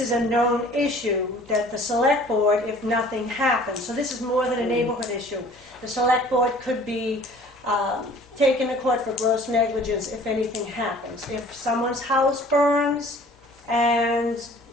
a known issue, that the select board, if nothing happens, so this is more than a neighborhood issue, the select board could be taken to court for gross negligence if anything happens. If someone's house burns and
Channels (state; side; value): normal; both; correlation 0.50